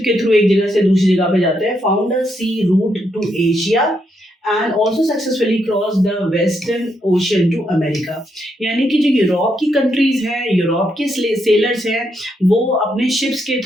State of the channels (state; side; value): normal; both; correlation 0.79